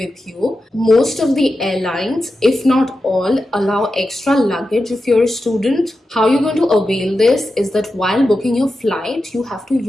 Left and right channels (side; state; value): both; normal; correlation 0.91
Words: you. Most of the airlines, if not all, allow extra luggage if you're a student. How you're going to avail this is that while booking your flight, you have to